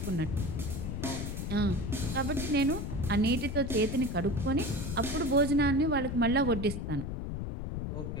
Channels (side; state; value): left; noise; rumble, 4 dB below the sound